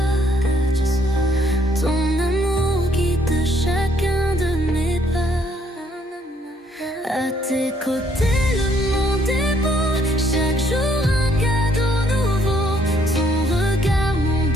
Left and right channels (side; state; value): both; normal; correlation 0.67